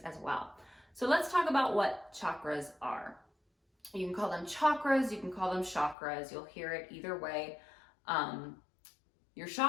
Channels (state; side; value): drops out; right; at 6.0 s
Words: as well. So let's talk about what chakras are. You can call them chakras, you can call them chakras, you'll hear it either way. Your